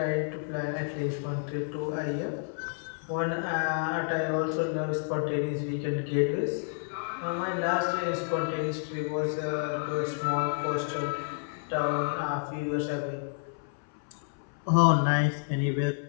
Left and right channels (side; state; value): right; silent; 58 dB below the other